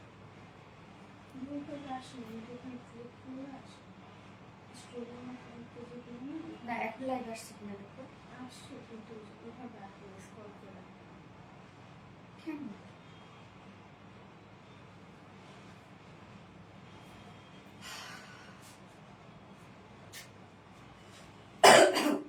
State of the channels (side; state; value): both; identical; correlation 1.00